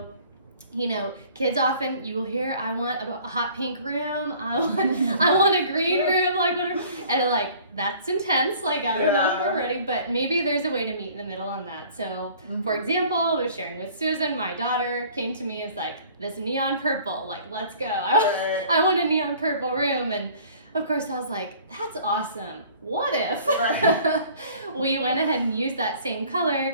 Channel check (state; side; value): inverted; both; correlation -0.51